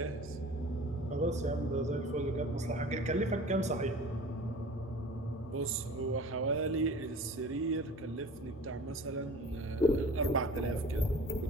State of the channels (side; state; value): both; normal; correlation 0.42